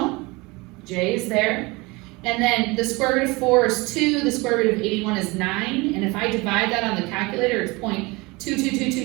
J is there. And then the square root of 4 is 2, the square root of 81 is 9, and if I divide that on the calculator, it's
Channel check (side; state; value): left; quieter; 24.5 dB